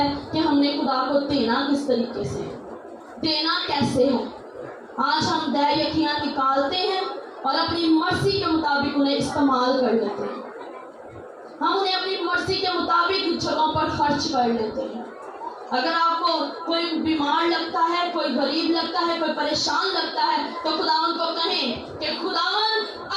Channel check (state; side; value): identical; both; correlation 1.00